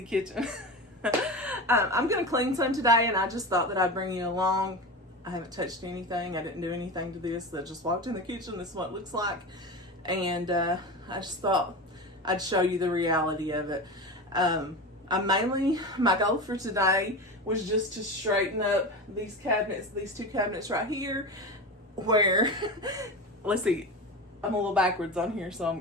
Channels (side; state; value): both; normal; correlation 0.25